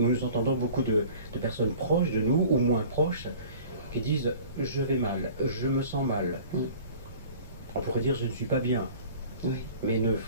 entendons beaucoup de personnes proches de nous, ou moins proches, qui disent « je vais mal, je me sens mal ». On pourrait dire « je ne suis pas bien ». Oui. Mais ne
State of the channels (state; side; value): inverted; both; correlation -0.46